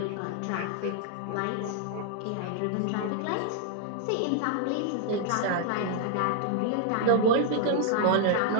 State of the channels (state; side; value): different; both; correlation 0.00